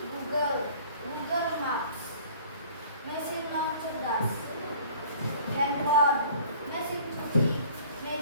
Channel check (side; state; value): both; inverted; correlation -0.50